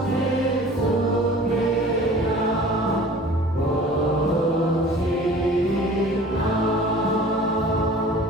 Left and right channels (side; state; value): both; normal; correlation 0.45